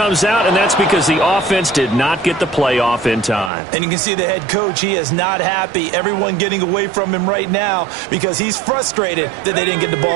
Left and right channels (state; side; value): drops out; left; at 3.5 s